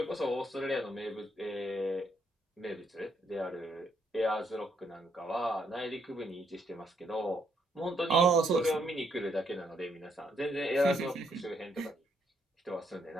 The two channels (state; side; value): normal; both; correlation 0.74